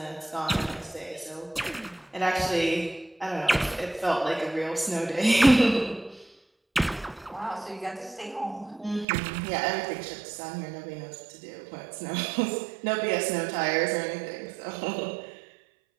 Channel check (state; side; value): drops out; left; at 9.1 s